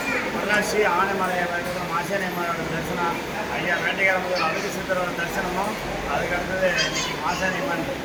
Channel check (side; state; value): both; identical; correlation 1.00